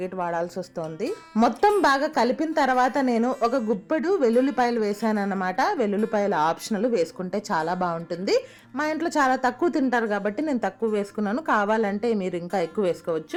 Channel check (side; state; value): both; identical; correlation 1.00